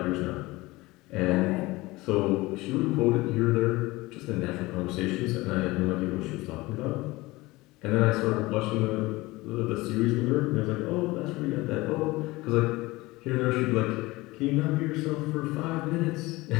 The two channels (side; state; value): right; quieter; 20.8 dB